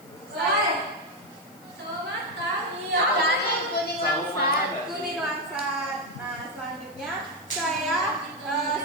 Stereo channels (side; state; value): left; noise; hiss, 25 dB below the sound